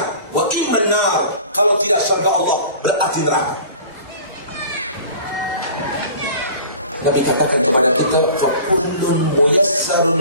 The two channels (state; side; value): inverted; both; correlation -0.43